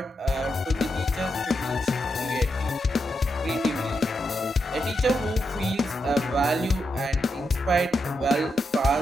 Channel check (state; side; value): normal; both; correlation 0.84